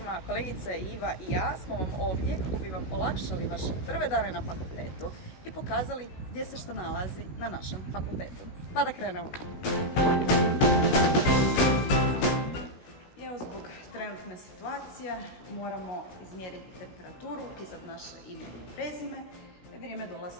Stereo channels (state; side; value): late; right; 16 ms